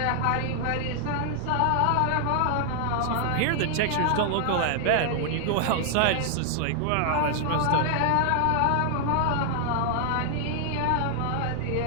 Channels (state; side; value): different; both; correlation 0.00